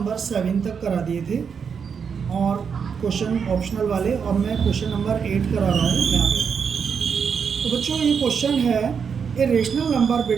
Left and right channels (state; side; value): quieter; left; 6.5 dB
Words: 7 तक करा दिए थे और क्वेश्चन ऑप्शनल वाले, और मैं क्वेश्चन नंबर 8 करा रहा हूँ यहाँ पे। तो बच्चों ये क्वेश्चन है a rational number